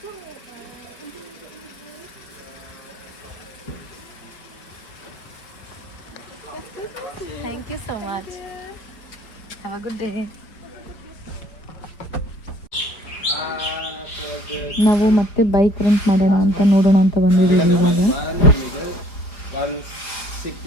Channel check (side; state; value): right; late; 4.9 ms